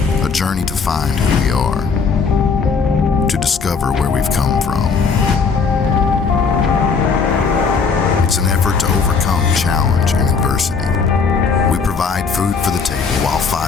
to find who we are, to discover where we've come from. It's an effort to overcome challenge and adversity. We provide food for the table while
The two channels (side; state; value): right; quieter; 5.2 dB